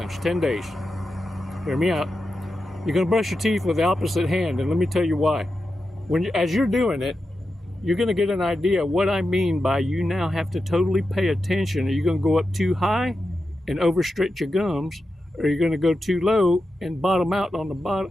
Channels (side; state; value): both; normal; correlation 0.90